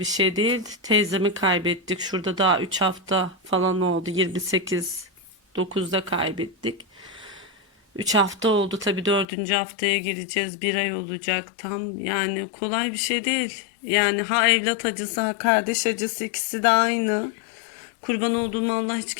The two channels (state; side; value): drops out; right; at 9.2 s